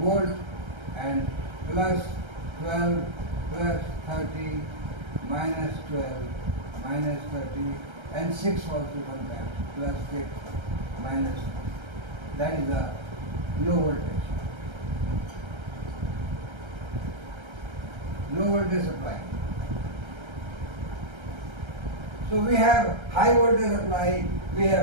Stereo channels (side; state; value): left; late; 1.3 ms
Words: and plus 12 plus 30 minus 12 minus 30 and 6 also sometimes plus 6 minus, that is the low voltage. Low voltage supply. So we have high voltage supply, we